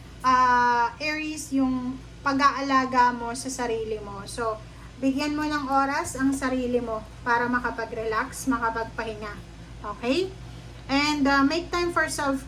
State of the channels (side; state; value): both; identical; correlation 1.00